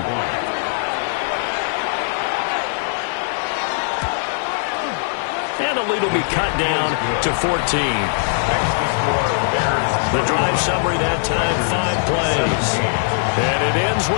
And the lead will be cut down to 14. The drive summary that time, 5 plays. And it ends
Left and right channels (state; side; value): silent; right; digital silence